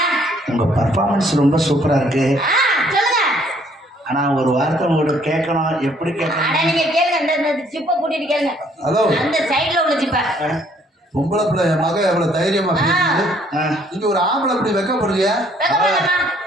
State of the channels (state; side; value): normal; both; correlation 0.63